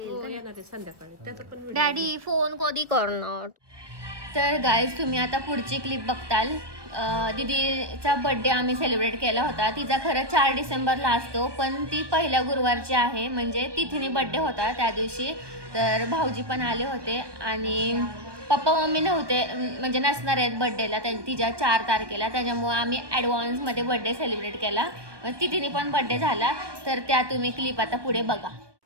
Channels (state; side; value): late; left; 1.2 ms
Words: संध्याकाळी. डॅडी फोन कधी करणार. तर गाईज तुम्ही आता पुढची क्लिप बघताल. दीदीचा बड्डे आम्ही सेलिब्रेट केला होता. तिचा खरं 4 डिसेंबरला असतो, पण ती पहिल्या गुरुवारची आहे, म्हणजे तिथीने बड्डे होता त्या दिवशी. तर भाऊजी पण आले होते आणि पप्पा मम्मी नव्हते, म्हणजे नसणार आहेत बड्डेला तिच्या 4 तारखेला. त्याच्यामुळे आम्ही ॲडव्हान्समध्ये बड्डे सेलिब्रेट केला. तिथीने पण बड्डे झाला. तर त्या तुम्ही क्लिप आता पुढे बघा.